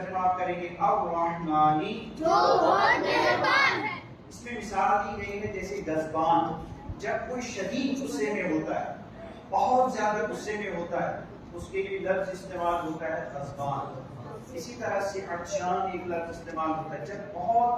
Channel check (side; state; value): both; identical; correlation 1.00